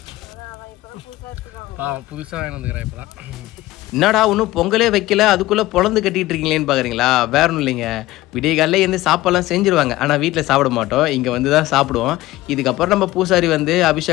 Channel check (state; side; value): quieter; right; 17.4 dB